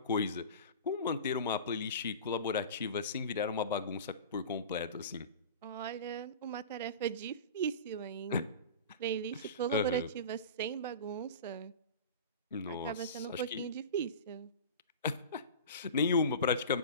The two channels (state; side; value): inverted; both; correlation -0.33